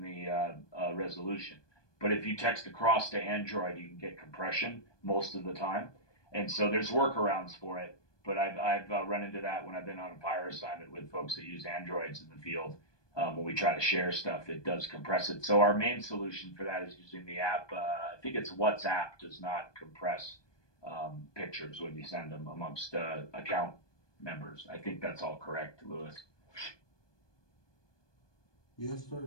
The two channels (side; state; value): right; late; 1.2 ms